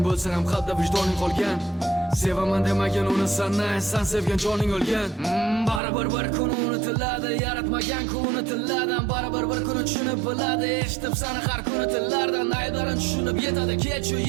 bo'lsa ham qalbda vijdoning qolgan. Sevaman demagan uni san sevgan joning o'lgan. Baribir bir kun unutiladi, yaratmagan kun unutiladi. Baribir bir kun tushunib biladi, eshitib sani har kuni tillardan. Aylarin tushunib yetadi, kechu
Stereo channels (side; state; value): left; drops out; at 5.8 s